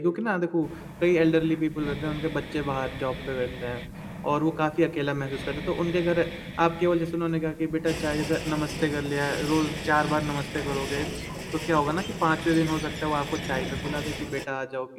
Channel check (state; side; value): identical; both; correlation 1.00